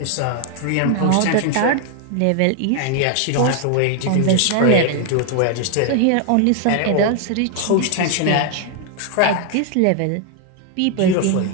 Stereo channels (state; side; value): different; both; correlation 0.00